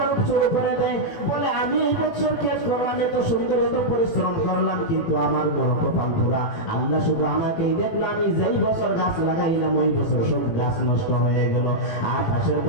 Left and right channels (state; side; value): late; right; 18 ms